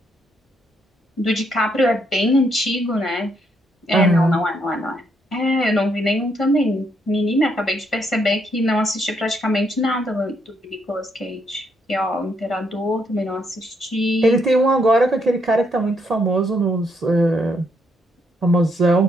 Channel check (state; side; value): normal; both; correlation 0.75